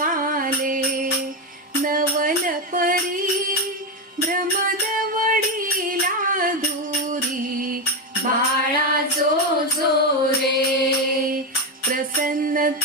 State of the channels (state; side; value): normal; both; correlation 0.10